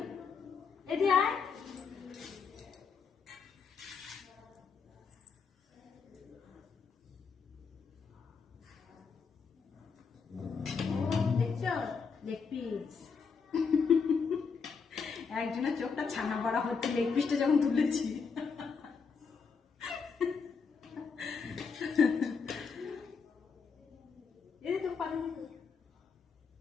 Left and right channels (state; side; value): quieter; right; 5.5 dB